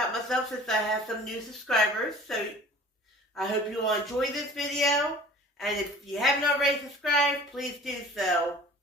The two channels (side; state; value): both; normal; correlation 0.45